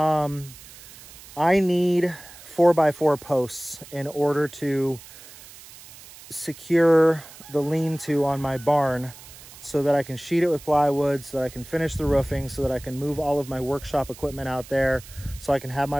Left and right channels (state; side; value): noise; right; hiss, 19 dB below the sound